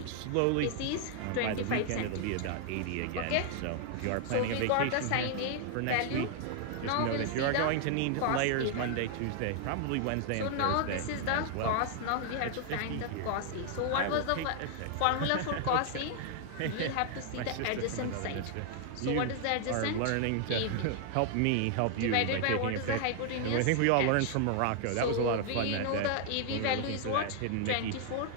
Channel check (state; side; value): different; both; correlation 0.00